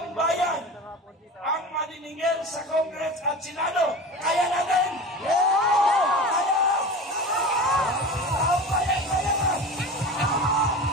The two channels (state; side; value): normal; both; correlation 0.32